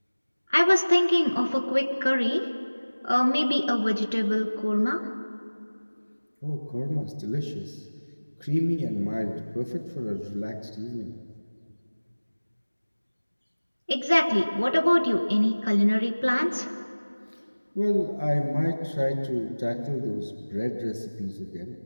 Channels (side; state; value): both; inverted; correlation -1.00